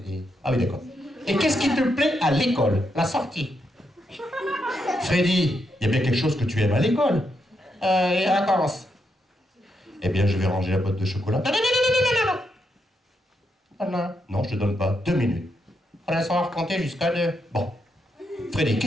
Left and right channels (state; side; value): normal; both; correlation 0.81